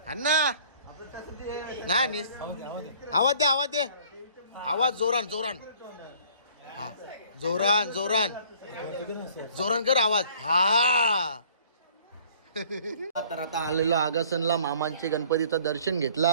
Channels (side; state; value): both; inverted; correlation -0.55